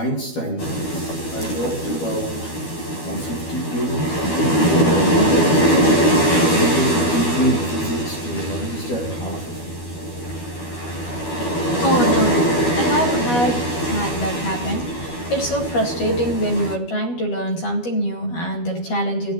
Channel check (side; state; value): right; late; 12 ms